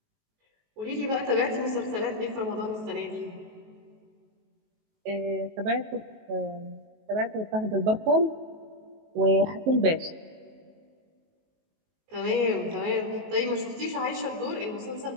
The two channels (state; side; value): late; left; 19 ms